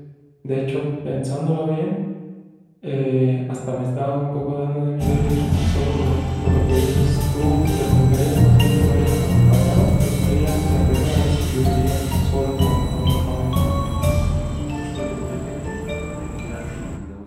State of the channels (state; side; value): identical; both; correlation 1.00